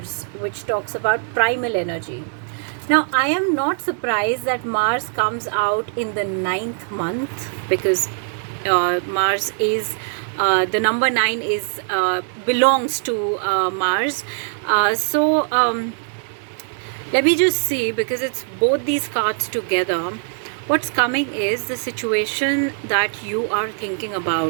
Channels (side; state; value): left; silent; 63 dB below the other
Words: which talks about primal energy. Now, I am not surprised that Mars comes out in the 9th month, because Mars is, the number 9 is, belongs to Mars. So let me just see, because it's both these cards together. What's coming is the situation that you are thinking